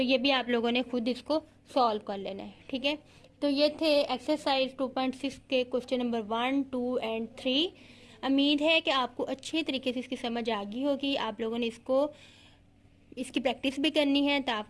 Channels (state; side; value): identical; both; correlation 1.00